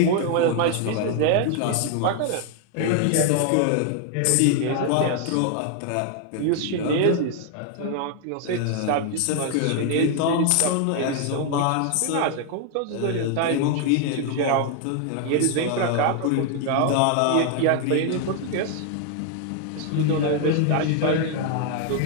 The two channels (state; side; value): different; both; correlation 0.00